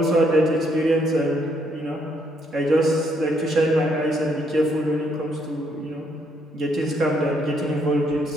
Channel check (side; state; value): both; normal; correlation 0.72